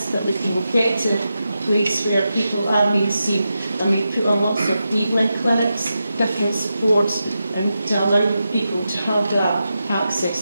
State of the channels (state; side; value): inverted; both; correlation -0.89